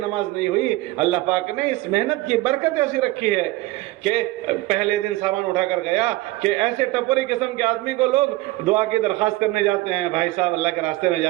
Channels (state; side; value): quieter; left; 19.2 dB